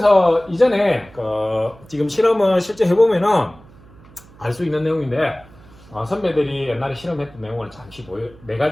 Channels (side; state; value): right; noise; hum, 24 dB below the sound